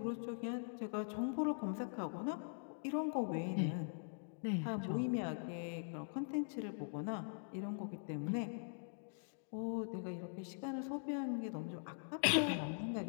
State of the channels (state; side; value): silent; right; digital silence